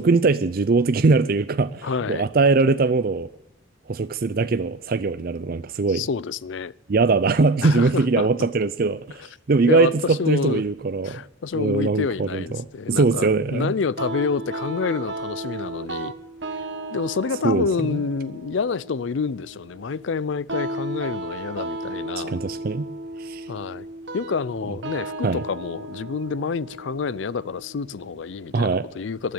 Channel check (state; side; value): normal; both; correlation 0.23